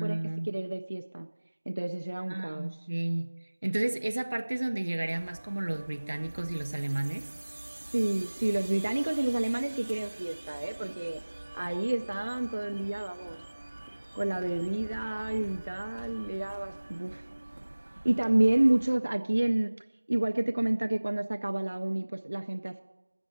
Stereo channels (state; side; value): inverted; both; correlation -1.00